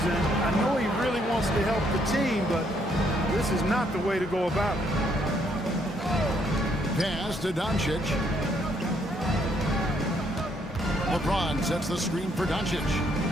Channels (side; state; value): both; normal; correlation 0.71